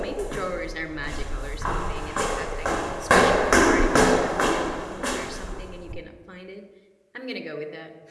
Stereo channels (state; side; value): identical; both; correlation 1.00